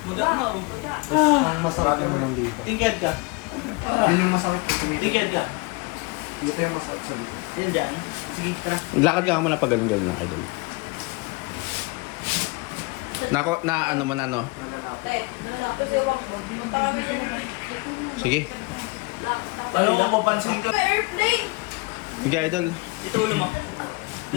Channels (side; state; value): right; quieter; 26.8 dB